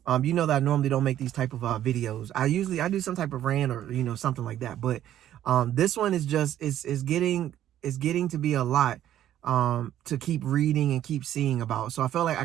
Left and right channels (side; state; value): left; quieter; 11.8 dB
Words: you know that I normally don't make these type of videos. I do some type of rant or something like that. But this one is just is getting to be a lot to keep reading and keep seeing about. So I felt like I